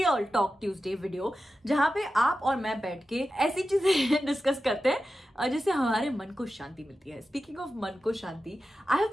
Talk Tuesday video, जहाँ पे आप और मैं बैठ के ऐसी चीजें डिस्कस करते हैं जिससे हमारे मन को शांति मिलती है. Speaking of मन को शांति, I have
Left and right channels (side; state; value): both; normal; correlation 0.92